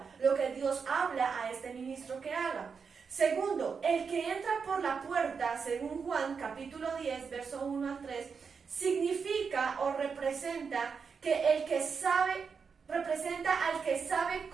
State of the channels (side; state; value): left; quieter; 5.7 dB